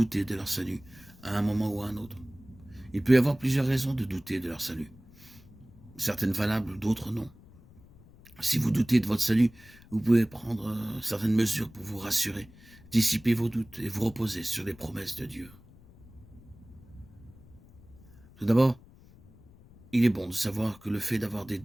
de leur salut à un moment ou à un autre. Il peut y avoir plusieurs raisons de douter de leur salut. Certaines valables, d'autres non. Si vous doutez de votre salut, vous pouvez prendre certaines mesures pour vous rassurer, dissiper vos doutes et vous reposer sur les promesses de Dieu. Tout d'abord, il est bon de savoir que le fait d'avoir des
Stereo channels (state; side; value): noise; left; rumble, 23 dB below the sound